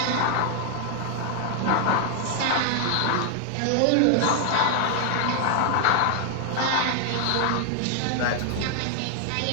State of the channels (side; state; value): both; different; correlation 0.00